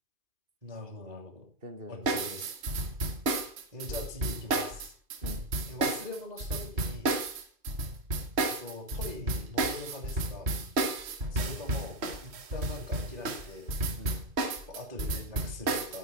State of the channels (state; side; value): late; left; 2.5 ms